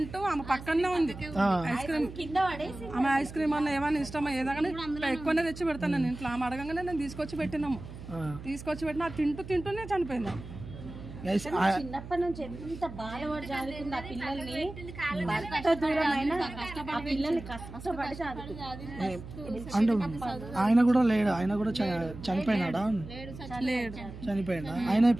ఆమె పక్కనే ఉంది, ఐస్ క్రీమ్ కింద పడేసి ఆమె ఐస్ క్రీమ్ అన్న ఏమైనా ఇష్టమా ఏదైనా ఎక్కువనే తెచ్చి పెడతాను నేను ఇంట్లో. ఆమె అడగంగానే నేను తీసుకొచ్చి పెట్టినాము, తీసుకొచ్చి పెట్టినా తింటూనే చనిపోయింది. చిన్నప్పటి నుంచి ఎంత బాధపడి చదువుకుంది ఆ పిల్లల్ని, భర్త దూరమైన ఆ పిల్లల్ని కష్టపడి చదువుకుంది. అంటే ఆయన కూడా లేడు, ఆయన కూడా చనిపోయినాడా? చనిపోయినా ఆయన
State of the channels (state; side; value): noise; right; hum, 13 dB below the sound